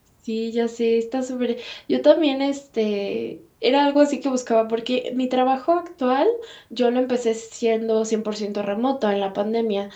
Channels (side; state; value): both; identical; correlation 1.00